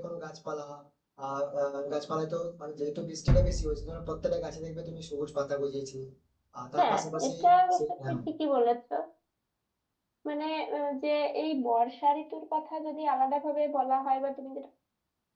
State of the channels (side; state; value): both; identical; correlation 1.00